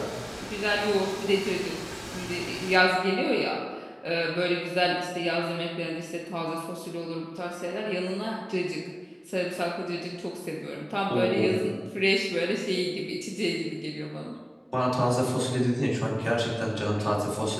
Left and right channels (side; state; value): both; identical; correlation 1.00